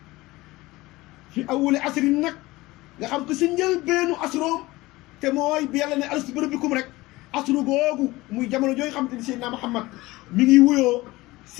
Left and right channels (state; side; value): quieter; right; 19.8 dB